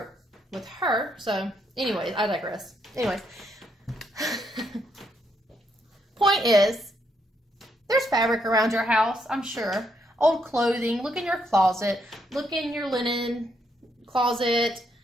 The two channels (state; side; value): normal; both; correlation 0.75